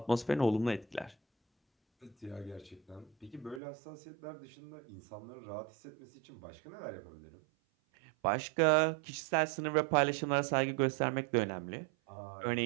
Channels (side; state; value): left; drops out; at 3.6 s